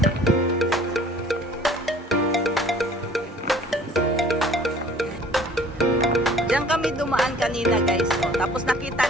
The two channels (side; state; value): both; normal; correlation 0.52